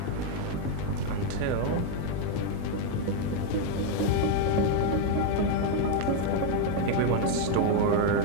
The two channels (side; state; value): both; different; correlation 0.01